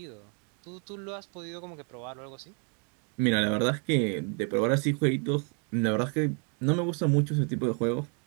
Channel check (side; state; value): left; quieter; 38.9 dB